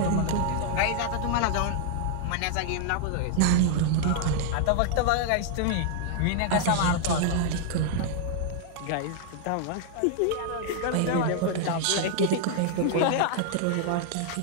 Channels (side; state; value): both; different; correlation -0.01